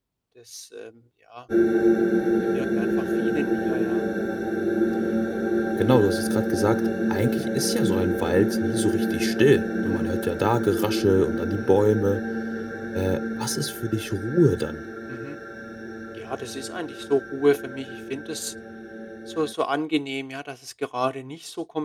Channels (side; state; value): both; identical; correlation 1.00